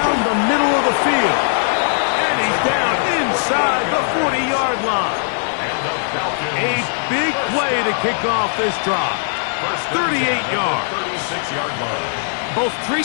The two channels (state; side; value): silent; right; digital silence